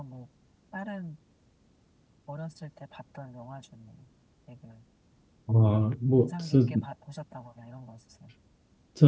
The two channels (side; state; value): both; identical; correlation 1.00